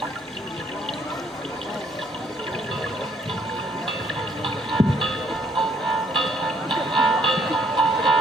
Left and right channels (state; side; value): normal; both; correlation 0.66